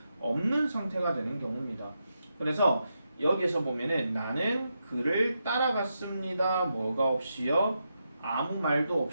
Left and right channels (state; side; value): inverted; both; correlation -0.85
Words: 없는 상태가 되는 경우입니다. 그래서 여기에서 보면은 나는 그를 따라갔습니다. 뭐가 없이요? 아무 말도